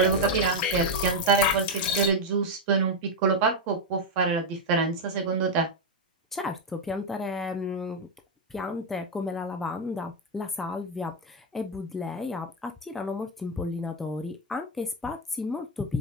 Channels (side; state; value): both; normal; correlation 0.04